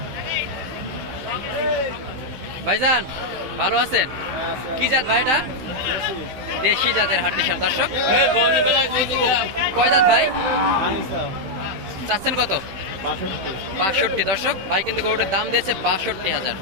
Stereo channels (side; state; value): left; late; 15 ms